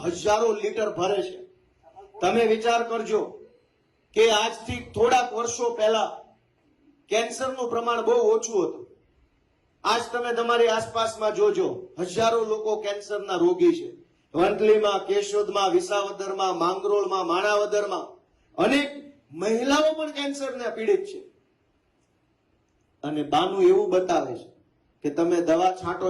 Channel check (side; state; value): both; identical; correlation 1.00